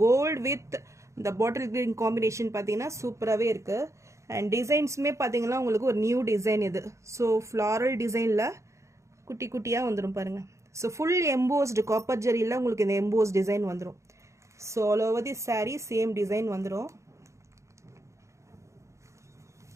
கோல்டு வித் இந்த பாட்டில் கிரீன் காம்பினேஷன் பார்த்தீங்கன்னா சூப்பராகவே இருக்குது. அண்ட் டிசைன்ஸுமே பார்த்தீங்கன்னா உங்களுக்கு ஒரு நியூ டிசைன் இது. ஸோ ஃப்ளாரல் டிசைனில் குட்டி குட்டியாக வந்துடும் பாருங்கள். ஸோ ஃபுல் எம்போஸ்டு காப்பர் ஜரியில் உங்களுக்கு இந்த எம்போஸ் டிசைன் வந்துடும். So all over the sari same design வந்துடும்.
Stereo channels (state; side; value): late; left; 0.14 ms